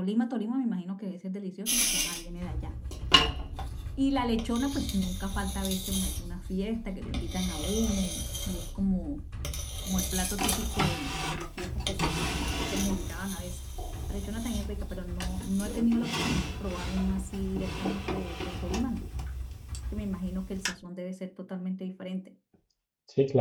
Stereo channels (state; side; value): identical; both; correlation 1.00